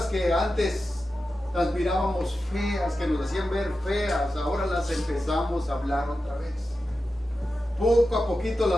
que antes las mirábamos feas, que nos hacían ver feas, ahora las empezamos a hablar otra vez. Poco a poquito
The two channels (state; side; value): normal; both; correlation 0.92